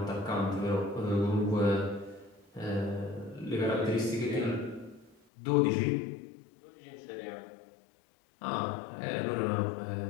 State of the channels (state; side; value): drops out; right; at 5.2 s